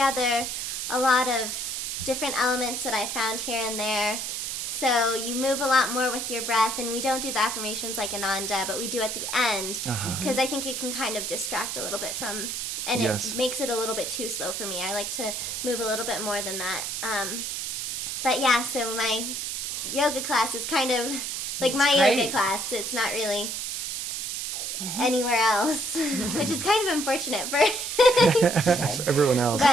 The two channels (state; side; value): noise; right; hiss, 3 dB below the sound